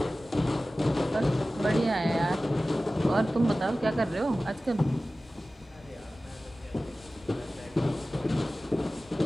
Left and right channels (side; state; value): both; normal; correlation 0.96